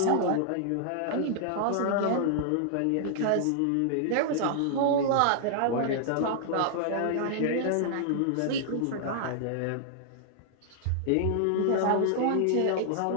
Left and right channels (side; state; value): both; different; correlation -0.01